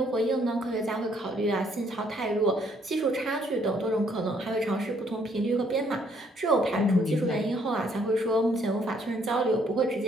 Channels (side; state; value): both; normal; correlation 0.67